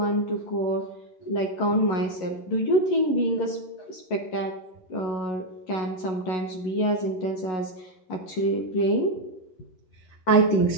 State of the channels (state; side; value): late; right; 11 ms